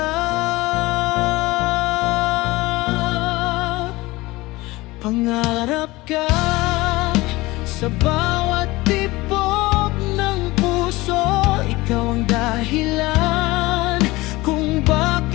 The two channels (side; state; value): right; quieter; 20.6 dB